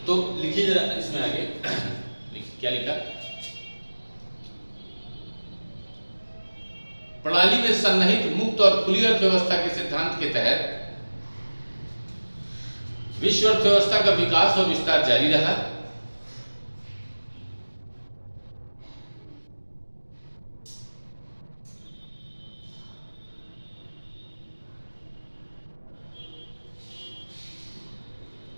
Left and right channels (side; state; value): both; inverted; correlation -1.00